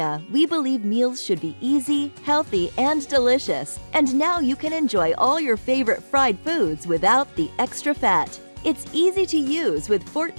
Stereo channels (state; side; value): inverted; both; correlation -1.00